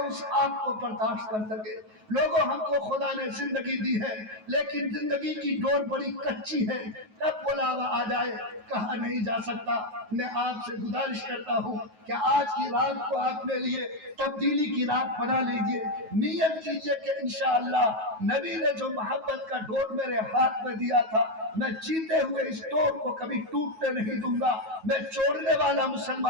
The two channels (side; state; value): left; late; 9.3 ms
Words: اس آگ کو برداشت کر کر سکے۔ لوگوں ہم کو خدا نے زندگی دی ہے لیکن زندگی کی ڈور بڑی کچی ہے، کب بلاوا آ جائے کہا نہیں جا سکتا۔ میں آپ سے گزارش کرتا ہوں کہ آج کی رات کو اپنے لیے تبدیلی کی رات بنا لیجئے، نیت کیجئے کہ انشاءاللہ نبی نے جو محبت کا ڈور میرے ہاتھ میں دیا تھا میں جیتے ہوئے اس ڈور کو کبھی ٹوٹنے نہیں دوں گا، میں چھوڑنے والا